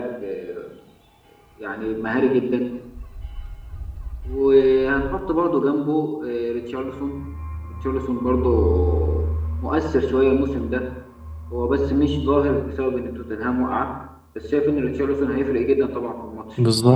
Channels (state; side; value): identical; both; correlation 1.00